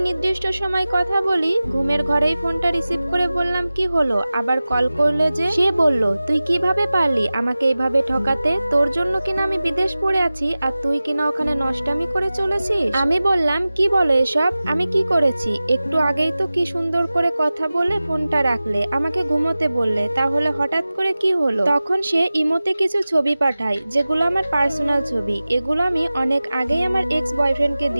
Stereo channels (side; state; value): both; inverted; correlation -0.96